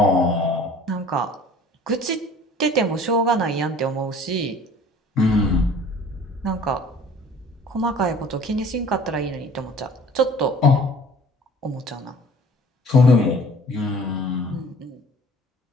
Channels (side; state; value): both; normal; correlation 0.49